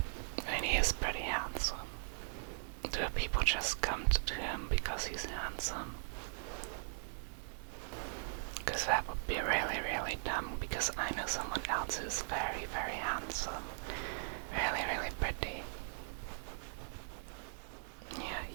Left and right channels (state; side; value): silent; left; 52 dB below the other